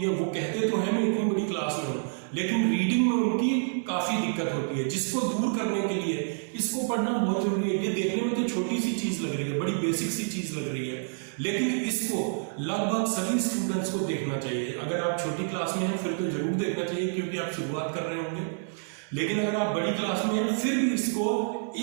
वो कहते तो हैं मैं इतनी बड़ी क्लास में हूँ, लेकिन रीडिंग में उनकी काफी दिक्कत होती है, जिसको दूर करने के लिए इसको पढ़ना बहुत जरूरी है। ये देखने में तो छोटी सी चीज लग रही है, बड़ी बेसिक सी चीज लग रही है, लेकिन इसको लगभग सभी स्टूडेंट्स को देखना चाहिए। अगर आप छोटी क्लास में हैं फिर तो जरूर देखना चाहिए, क्योंकि आप शुरुआत कर रहे होंगे। लेकिन अगर आप बड़ी क्लास में हैं फिर भी इसको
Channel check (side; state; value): left; silent; 59 dB below the other